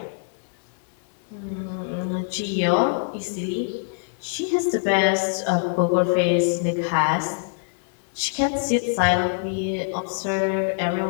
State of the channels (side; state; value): right; silent; 62 dB below the other